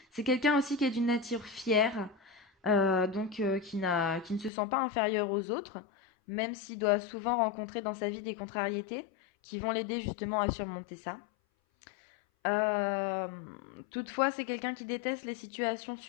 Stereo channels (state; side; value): drops out; right; at 4.5 s